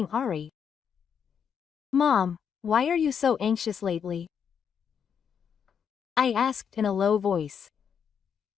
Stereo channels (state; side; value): quieter; right; 7.4 dB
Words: Irie?" "Mom, why are you so anxious lately?" I asked in a low voice.